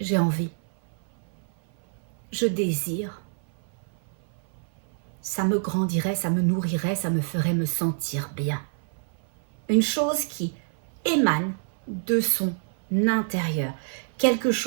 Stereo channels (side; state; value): left; silent; 57 dB below the other